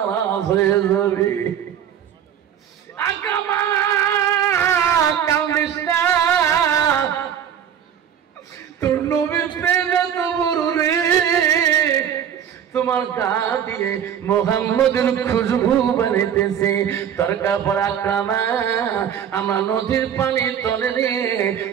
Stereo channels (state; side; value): quieter; left; 9.1 dB